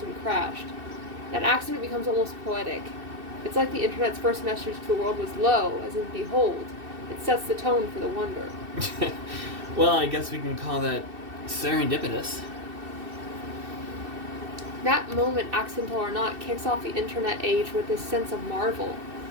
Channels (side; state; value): left; late; 2.7 ms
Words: crashed. That accident becomes almost poetic. It's like the internet's first message to the world was lo, as in behold. It sets the tone for the wonder. Well, I guess we can call that serendipitous. That moment, accidental or not, kicks off the internet age with this sense of marvel.